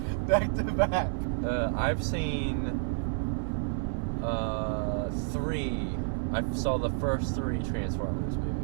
back to back. I've seen 3. I saw the first 3 Transformers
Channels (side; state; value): left; silent; 58 dB below the other